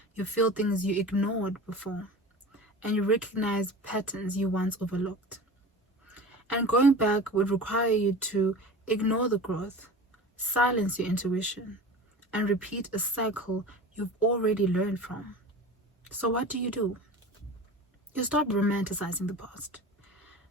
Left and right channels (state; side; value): normal; both; correlation 0.34